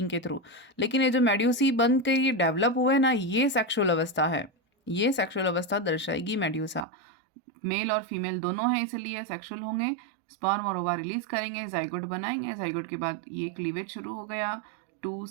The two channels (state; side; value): drops out; left; at 6.9 s